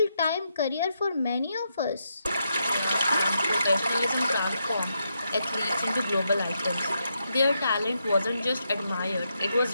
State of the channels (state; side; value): inverted; both; correlation -0.82